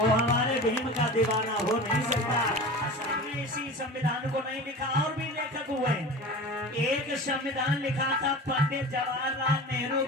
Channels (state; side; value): normal; both; correlation 0.34